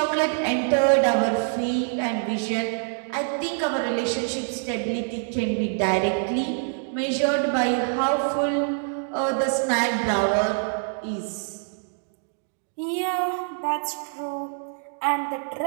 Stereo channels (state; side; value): silent; left; digital silence